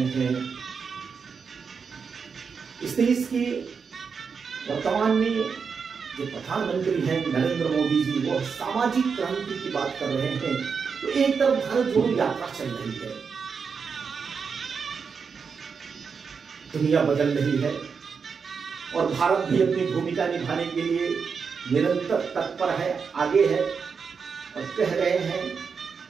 हैं। इस देश के वर्तमान में जो प्रधानमंत्री हैं नरेंद्र मोदी जी, वो सामाजिक क्रांति की बात कर रहे हैं। तो एक तरफ भारत जोड़ो यात्रा चल रही है, दुनिया बदल रही है और भारत भी अपनी भूमिका निभाने के लिए निरंतर तत्पर है, आगे है और कह रहे हैं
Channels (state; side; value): quieter; left; 5.8 dB